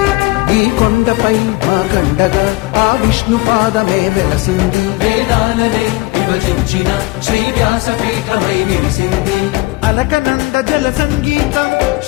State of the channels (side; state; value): right; quieter; 21.5 dB